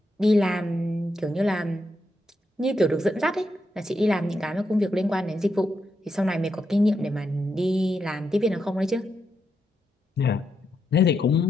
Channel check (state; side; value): normal; both; correlation 0.83